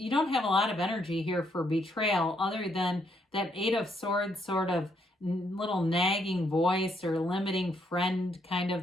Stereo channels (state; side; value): normal; both; correlation 0.73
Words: don't have a lot of energy here for betrayal other than that Eight of Swords sort of little nagging voice or limiting friend kind